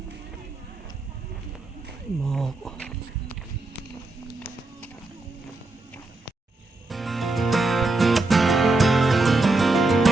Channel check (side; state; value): left; quieter; 3.1 dB